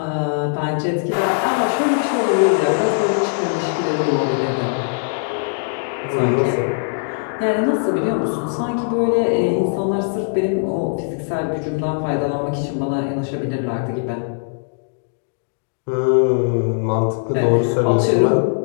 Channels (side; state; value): right; silent; digital silence